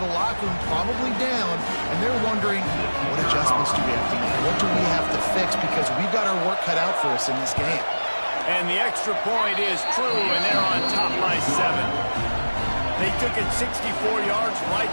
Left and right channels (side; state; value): both; inverted; correlation -1.00